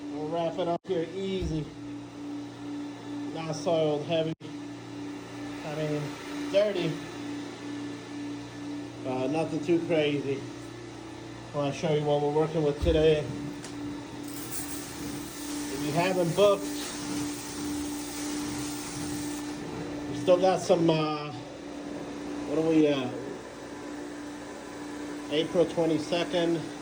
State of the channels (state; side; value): identical; both; correlation 1.00